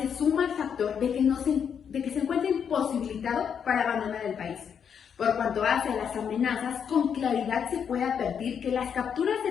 suma al factor de que se encuentra imposibilitado para abandonar el país. Por cuanto hace a las amenazas, con claridad se puede advertir que las capturas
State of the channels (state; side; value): quieter; right; 7.5 dB